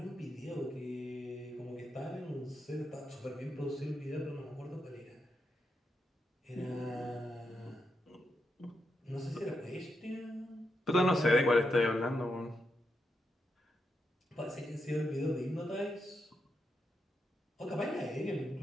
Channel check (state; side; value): normal; both; correlation 0.84